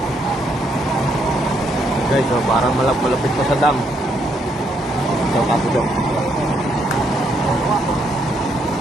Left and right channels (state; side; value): normal; both; correlation 0.73